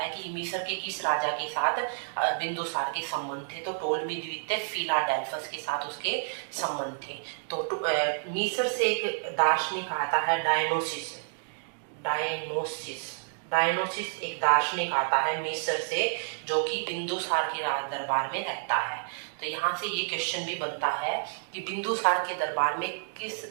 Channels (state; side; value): silent; left; digital silence